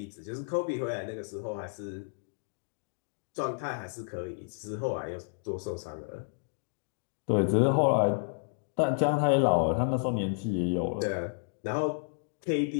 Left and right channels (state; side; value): silent; right; digital silence